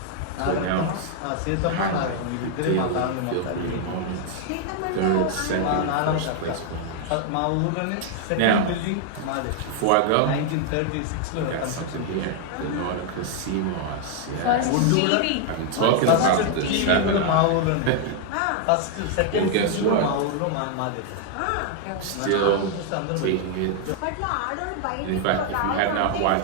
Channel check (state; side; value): different; both; correlation 0.00